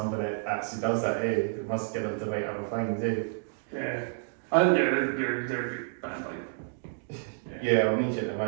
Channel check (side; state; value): left; silent; digital silence